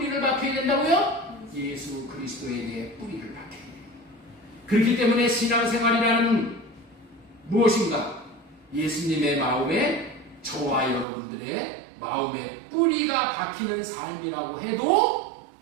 박혀야 된다고요? 예수 그리스도에게 뿌리를 박혀야 돼요. 그렇기 때문에 신앙생활이라는 무엇인가? 예수님의 마음에 저와 여러분들의 마음에 뿌리가 박히는 삶이라고 해도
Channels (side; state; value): left; drops out; at 11.1 s